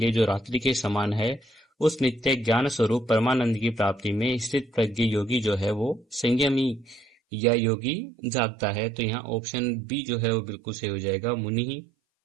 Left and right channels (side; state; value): left; drops out; at 7.2 s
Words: जो रात्रि के समान है उस नित्य ज्ञान स्वरूप परमानंद की प्राप्ति में स्थित प्रज्ञ योगी जो है वो संयमी या योगी जागता है। तो यहाँ ऑप्शन बी जो है वो बिल्कुल सही हो जाएगा, मुनि ही।